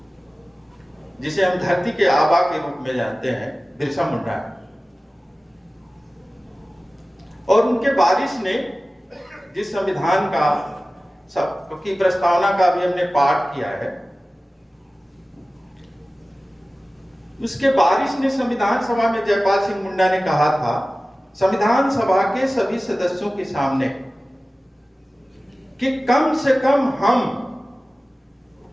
जिसे हम धरती के आबा के रूप में जानते हैं, बिरसा मुंडा, और उनके वारिस ने जिस संविधान का सबकी प्रस्तावना का भी हमने पाठ किया है, उसके वारिस ने संविधान सभा में जयपाल सिंह मुंडा ने कहा था संविधान सभा के सभी सदस्यों के सामने कि कम से कम हम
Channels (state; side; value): normal; both; correlation 0.96